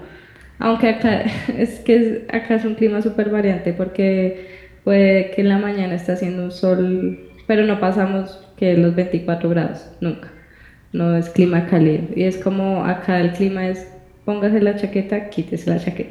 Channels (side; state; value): both; identical; correlation 1.00